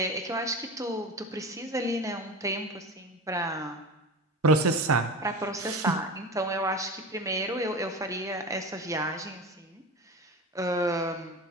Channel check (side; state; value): both; normal; correlation 0.29